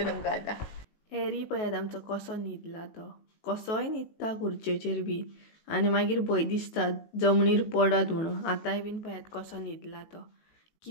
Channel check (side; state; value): right; late; 18 ms